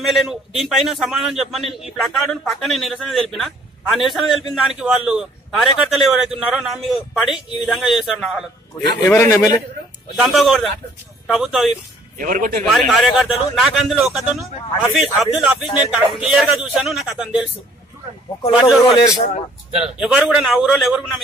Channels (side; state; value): both; normal; correlation 0.59